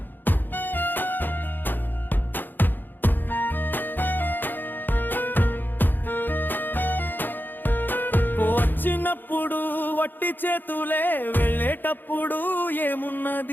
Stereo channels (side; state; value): right; late; 0.091 ms